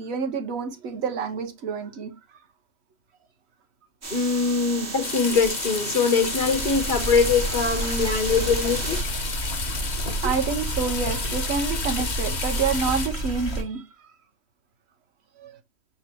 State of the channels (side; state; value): left; late; 3.1 ms